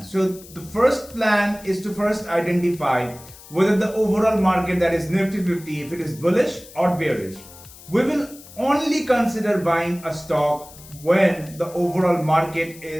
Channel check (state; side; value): noise; left; hiss, 20 dB below the sound